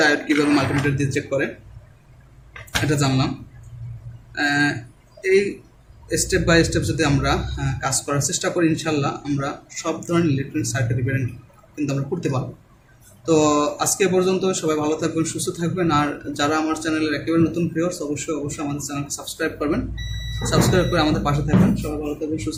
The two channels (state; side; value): identical; both; correlation 1.00